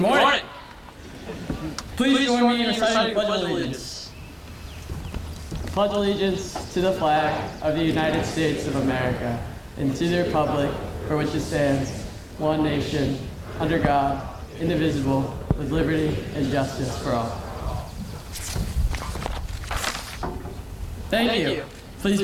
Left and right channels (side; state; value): both; identical; correlation 1.00